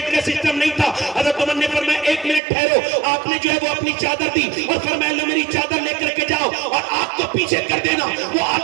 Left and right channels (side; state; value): left; drops out; at 2.4 s